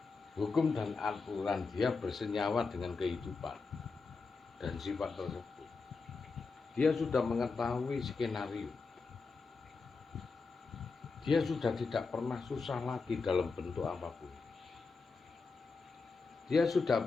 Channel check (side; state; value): right; quieter; 4.4 dB